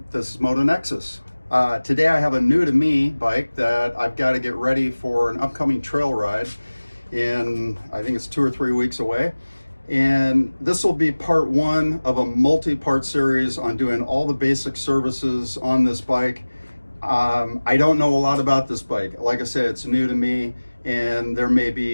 this is Motonexus. Today I have a new to me bike that I've got to get ready for an upcoming trail ride in, I think it's 2 or 3 weeks away. And this will be part one of a multi-part series on doing all the basic services on this bike. I don't know a lot about this bike. Like I said, it's new to me, and there may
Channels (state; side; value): inverted; both; correlation -1.00